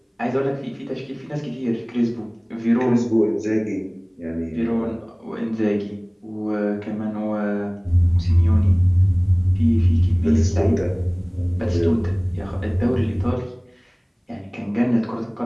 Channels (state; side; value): identical; both; correlation 1.00